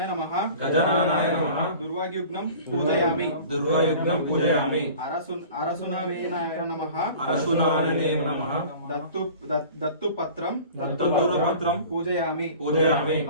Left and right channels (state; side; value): inverted; both; correlation -0.43